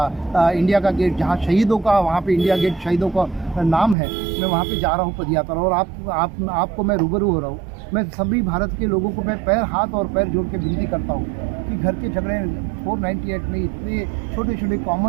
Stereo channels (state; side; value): drops out; left; at 4.0 s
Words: इंडिया का गेट, जहाँ शहीदों का, वहाँ पे इंडिया गेट शहीदों का नाम है, मैं वहाँ पे जा रहा हूँ पदयात्रा, और आपको मैं रूबरू हो रहा हूँ। मैं सभी भारत के लोगों को मैं हाथ और पैर जोड़ के विनती करता हूँ कि घर के झगड़े 498 में इतने छोटे छोटे